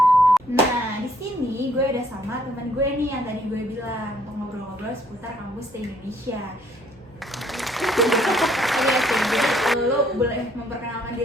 Nah, di sini gue udah sama temen gue nih yang tadi gue bilang untuk ngobrol-ngobrol seputar kampus Stay Indonesia. Lu boleh memperkenalkan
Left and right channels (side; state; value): both; normal; correlation 0.65